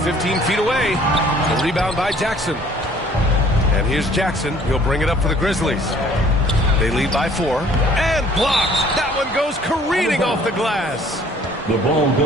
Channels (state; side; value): normal; both; correlation 0.56